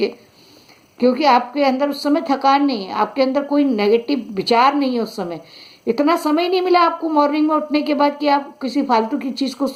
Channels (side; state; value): both; identical; correlation 1.00